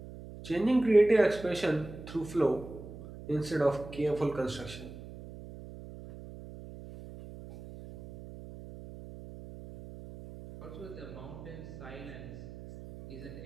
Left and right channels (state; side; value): noise; right; hum, 14 dB below the sound